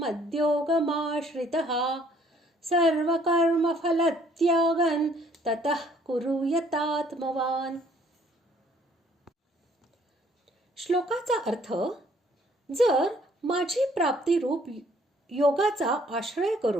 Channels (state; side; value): normal; both; correlation 0.61